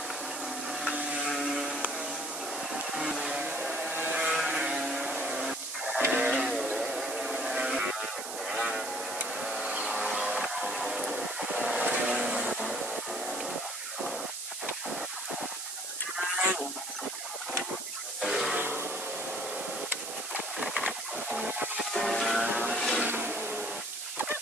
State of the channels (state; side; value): noise; right; hiss, 6 dB below the sound